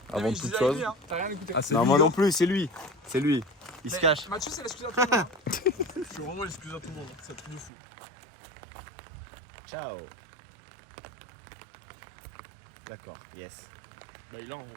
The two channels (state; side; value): drops out; left; at 7.7 s